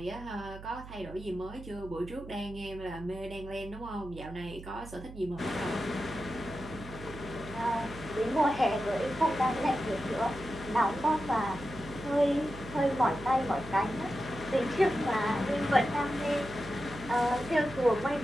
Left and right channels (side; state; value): right; noise; hum, 14 dB below the sound